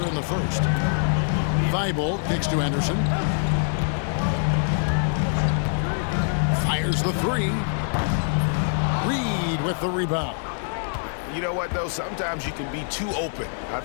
in the first. Thybulle kicks to Henderson. Fires the 3. Reed with the rebound. You know what, though? Sometimes you can be too open. I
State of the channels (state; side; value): silent; right; 62 dB below the other